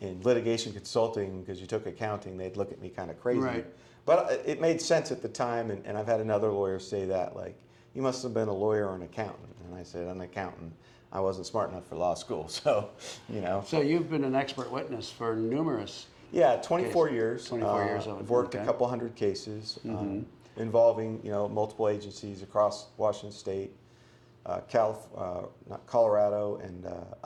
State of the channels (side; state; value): both; identical; correlation 1.00